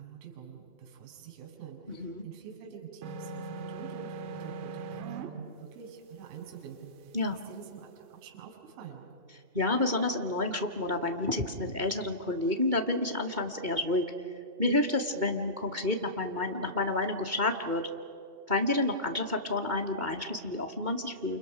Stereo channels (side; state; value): left; late; 2.2 ms